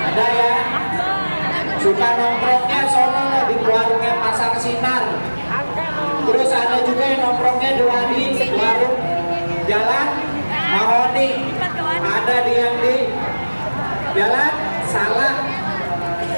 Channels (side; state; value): both; inverted; correlation -1.00